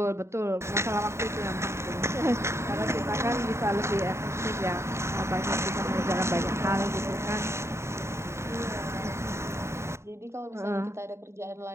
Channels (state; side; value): late; left; 0.13 ms